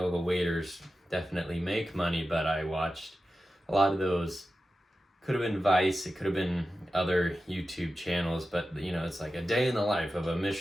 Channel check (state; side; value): normal; both; correlation 0.93